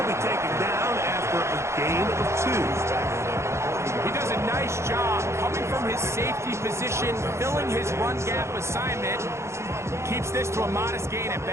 be taken down after a gain of 2. He does a nice job coming from his safety position, filling his run gap assignment. Keeps this to a modest gain at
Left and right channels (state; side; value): late; left; 0.13 ms